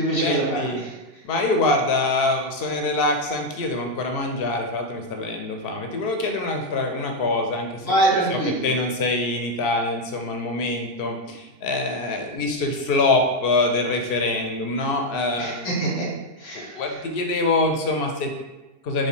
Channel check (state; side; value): late; right; 2.7 ms